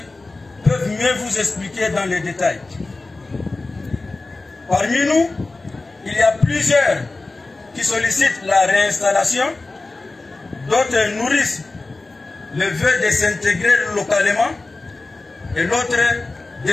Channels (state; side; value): quieter; right; 3.3 dB